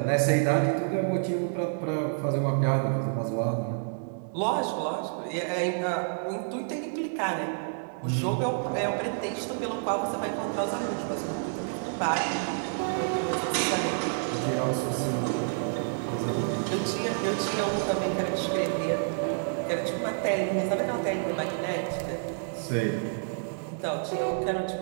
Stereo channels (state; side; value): silent; left; digital silence